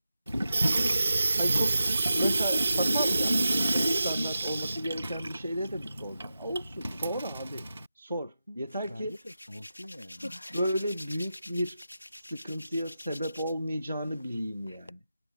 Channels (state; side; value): inverted; both; correlation -0.90